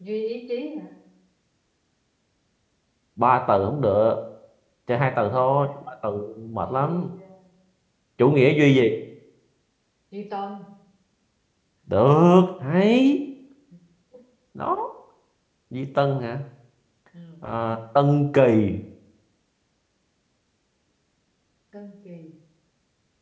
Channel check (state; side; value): identical; both; correlation 1.00